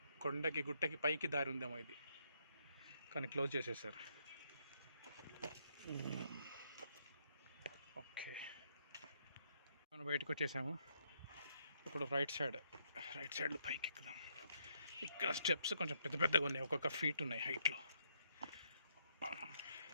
కొండకి గుట్టకి పైకి దారి ఉందేమో ఇది, కానీ క్లోజ్ చేసేసారు. ఓకే, మనం బయటకు వచ్చేసాము. ఇప్పుడు రైట్ సైడ్లో పైకి ఎక్కుదాం. ఇక్కడ స్టెప్స్ కొంచెం పెద్ద పెద్దగా ఉన్నాయి, ఒక్కొక్క ఫీట్ ఉన్నాయి హైట్లో.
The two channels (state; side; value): inverted; both; correlation -0.74